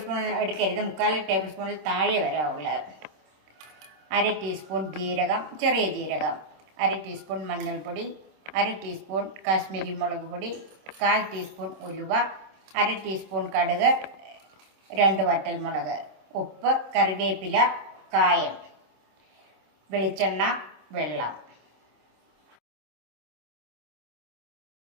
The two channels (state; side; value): late; left; 26 ms